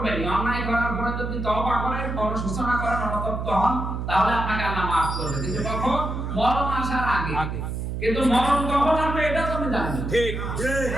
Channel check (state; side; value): noise; right; hum, 4 dB below the sound